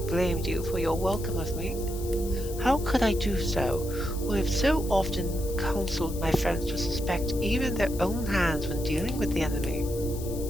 you for your welcome of me? How could I do so, who have so often counseled my friends to suspect even their own hands when dealing with the enemy?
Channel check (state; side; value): noise; left; hiss, 14 dB below the sound